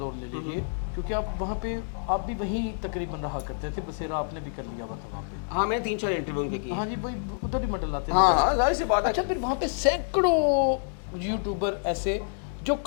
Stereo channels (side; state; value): right; silent; digital silence